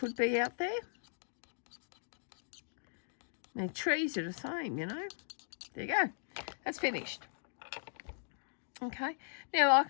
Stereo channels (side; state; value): right; silent; digital silence